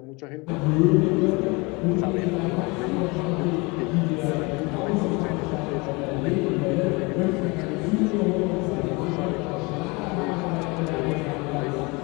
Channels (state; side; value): quieter; right; 26.9 dB